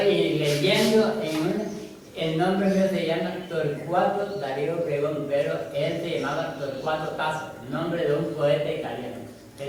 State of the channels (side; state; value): both; identical; correlation 1.00